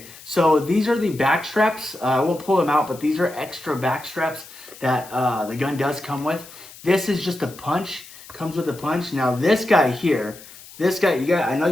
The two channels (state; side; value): noise; left; hiss, 19 dB below the sound